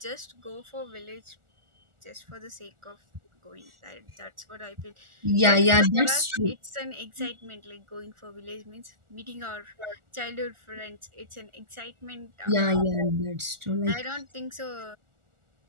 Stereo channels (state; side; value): late; left; 1.4 ms